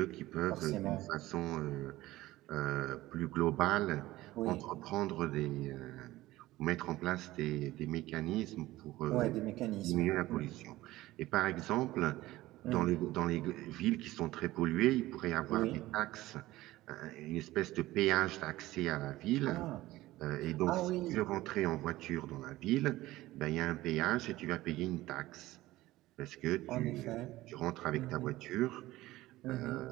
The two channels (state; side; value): quieter; left; 17.1 dB